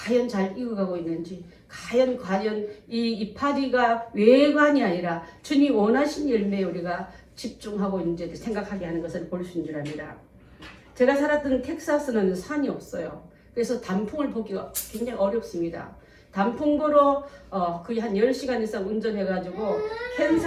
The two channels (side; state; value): both; identical; correlation 1.00